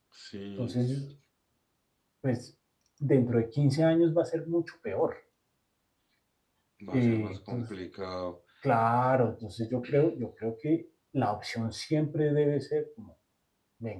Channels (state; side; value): identical; both; correlation 1.00